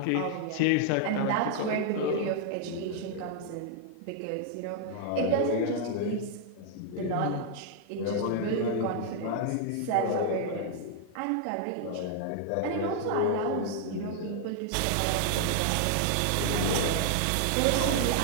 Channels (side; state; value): both; different; correlation 0.00